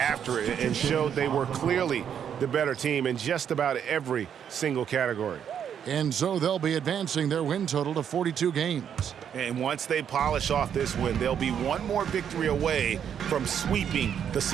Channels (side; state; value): left; quieter; 8.5 dB